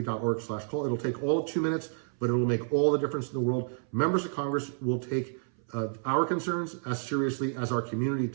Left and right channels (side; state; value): left; silent; 58 dB below the other